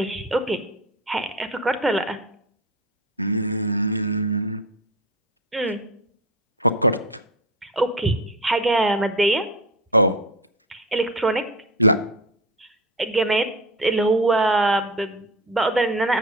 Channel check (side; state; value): both; normal; correlation 0.24